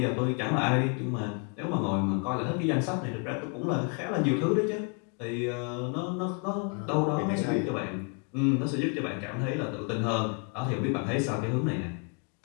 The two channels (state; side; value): quieter; right; 37.5 dB